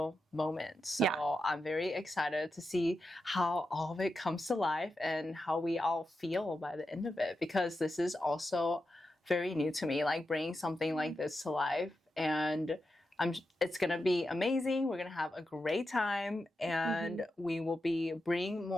moment. So Yeah. I'm very excited to see how all of it comes to life and how we all feel by the end of it, because this is also very new to me, like bringing something like this to life. And it's going to be amazing. We're going to have a great time, and we will be bringing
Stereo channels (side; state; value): both; normal; correlation 0.89